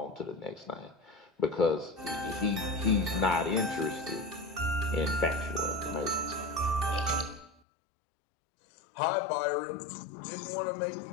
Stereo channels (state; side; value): drops out; right; at 7.5 s